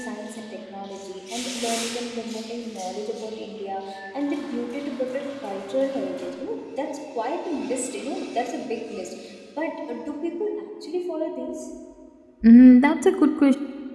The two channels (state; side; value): identical; both; correlation 1.00